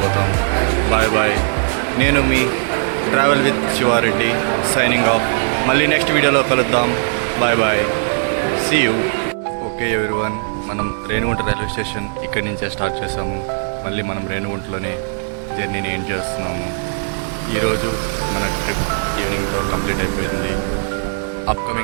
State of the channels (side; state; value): left; silent; digital silence